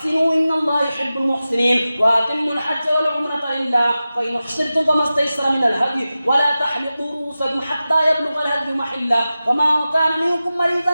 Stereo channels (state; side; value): inverted; both; correlation -0.95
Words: إن الله يحب المحسنين. وأتموا الحج والعمرة لله فإن أحصرتم فما استيسر من الهدي ولا تحلقوا رؤوسكم حتى يبلغ الهدي محله فما كان منكم